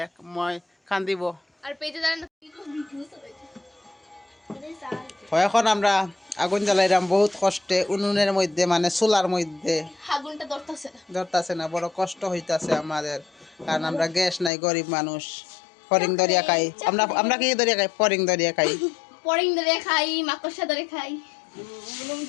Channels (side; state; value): right; drops out; at 14.5 s